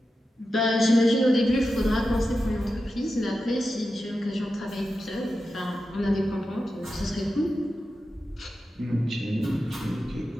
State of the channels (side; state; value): both; normal; correlation 0.91